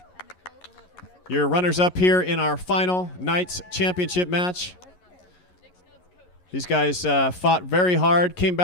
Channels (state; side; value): late; right; 11 ms